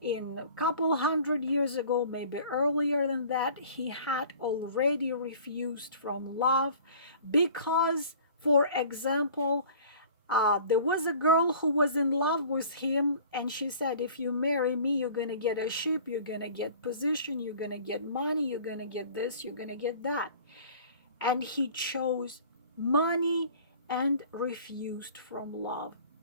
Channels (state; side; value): inverted; both; correlation -0.47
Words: In a couple hundred years ago, maybe earlier than that, he had already refused from love because, for example, there was a girl who was in love with him, and she said, if you marry me, you're going to get a ship, you're going to get position, you're going to get money, you're going to get this, you're going to get that. And he chose money and refused from love.